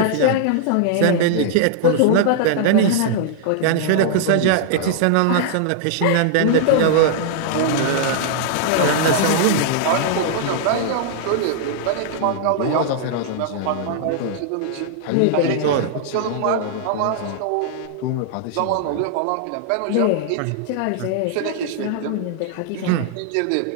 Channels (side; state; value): both; different; correlation -0.01